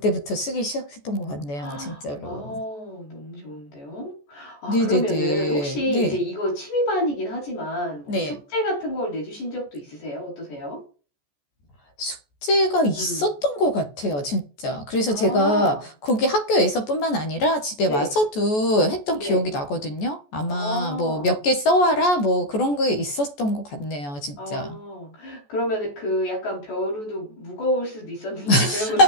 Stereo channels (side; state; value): right; late; 14 ms